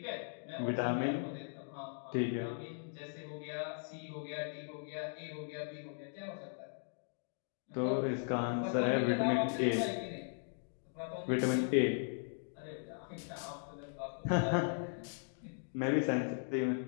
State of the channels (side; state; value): right; silent; digital silence